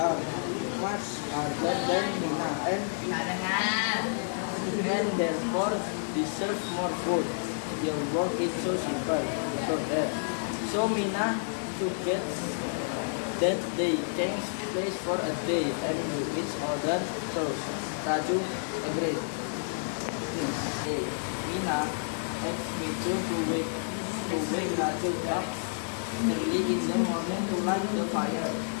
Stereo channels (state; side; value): silent; right; digital silence